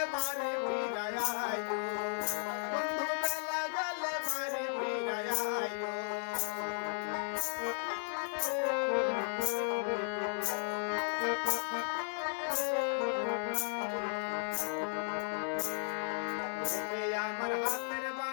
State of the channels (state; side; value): silent; right; 54 dB below the other